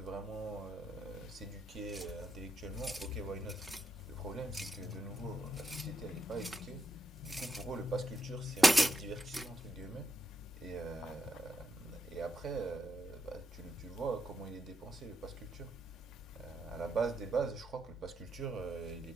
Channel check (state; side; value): normal; both; correlation 0.82